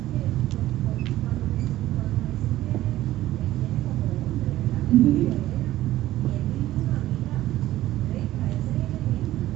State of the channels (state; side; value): quieter; left; 14.8 dB